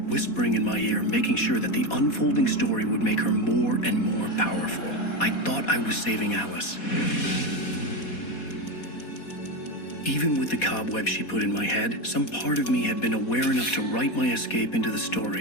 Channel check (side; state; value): right; late; 4.2 ms